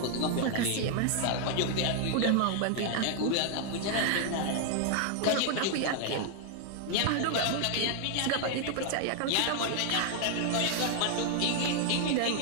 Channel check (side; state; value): both; different; correlation 0.00